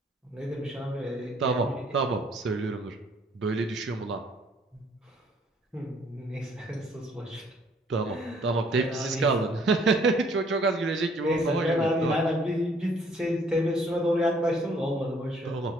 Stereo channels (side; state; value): both; normal; correlation 0.62